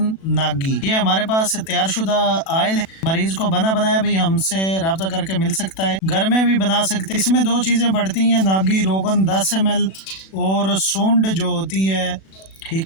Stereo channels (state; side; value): late; right; 37 ms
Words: नागी। ये हमारे पास तैयार शुदा आयल है। मरीज को बना बनाया भी हमसे रब्ता करके मिल सकता है, घर में भी बना सकते हैं। इसमें दो चीज़ें पड़ती हैं, नागी रोगन 10 ml और सूंड जो होती है,